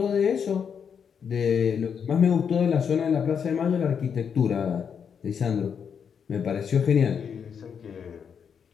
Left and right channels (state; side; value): quieter; right; 7.1 dB